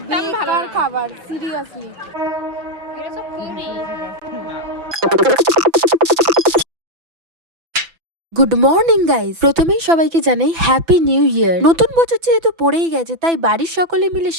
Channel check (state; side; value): late; left; 6.0 ms